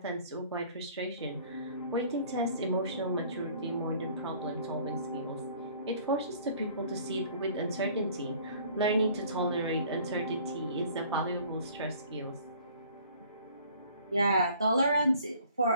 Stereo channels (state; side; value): inverted; both; correlation -0.54